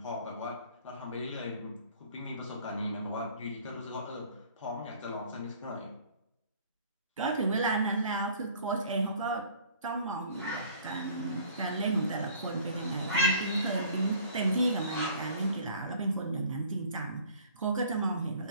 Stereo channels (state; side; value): inverted; both; correlation -0.51